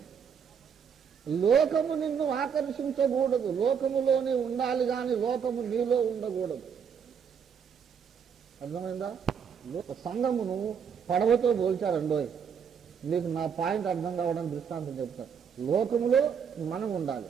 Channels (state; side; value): quieter; left; 7.1 dB